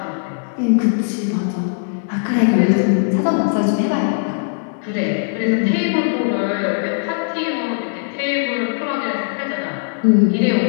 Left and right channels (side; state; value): right; silent; digital silence